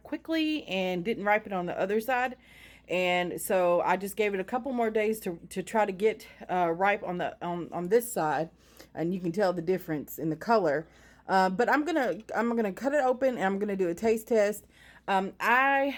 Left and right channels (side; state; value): both; identical; correlation 1.00